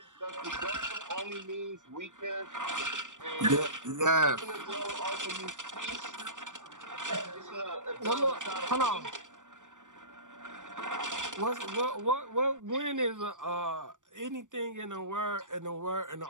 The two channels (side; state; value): left; late; 0.87 ms